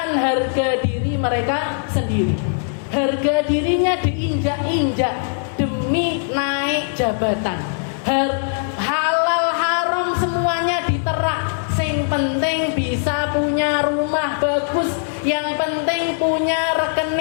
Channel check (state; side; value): silent; right; digital silence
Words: harga diri mereka sendiri. Harga dirinya diinjak-injak demi naik jabatan. Halal haram semuanya diterak. Sing penting bisa punya rumah bagus, yang penting punya